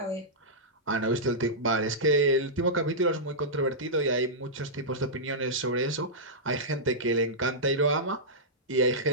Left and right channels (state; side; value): normal; both; correlation -0.12